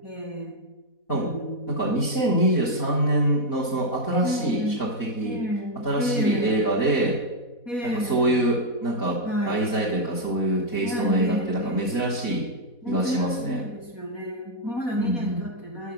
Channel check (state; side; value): late; right; 4.1 ms